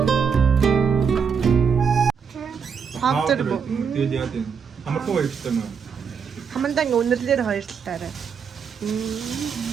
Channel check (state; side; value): quieter; left; 6.5 dB